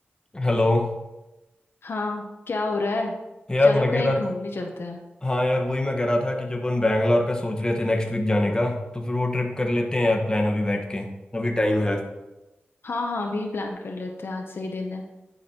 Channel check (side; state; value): both; normal; correlation 0.94